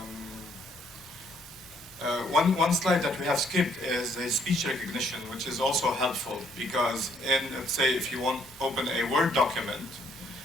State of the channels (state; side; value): normal; both; correlation 0.67